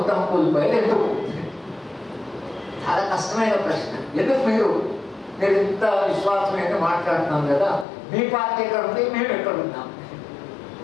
కూలిపోయారు ఎందుకు? చాలా కష్టమైన ప్రశ్న. ఎందుకు మీరు ఇంత విశ్వాసమైన మాట్లాడుతున్నాం కదా, మీ పార్టీ ఎక్కడ ఉంది, మేము ఎక్కడ ఉన్నాం?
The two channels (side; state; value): right; drops out; at 7.9 s